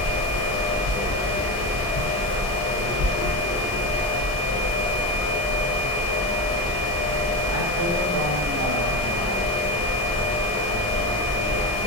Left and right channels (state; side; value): normal; both; correlation 0.18